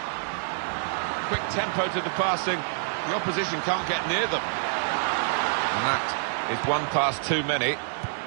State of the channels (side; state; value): left; silent; 60 dB below the other